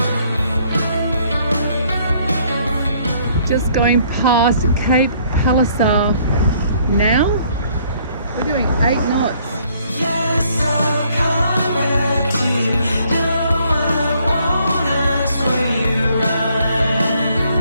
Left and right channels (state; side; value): inverted; both; correlation -0.64